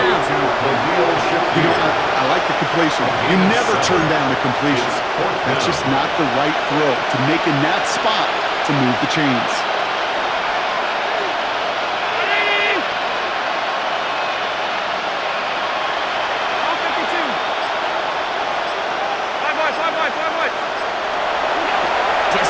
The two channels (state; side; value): identical; both; correlation 1.00